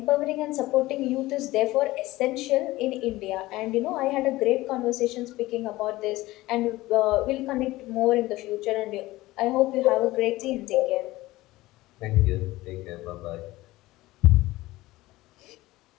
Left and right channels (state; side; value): quieter; right; 18.3 dB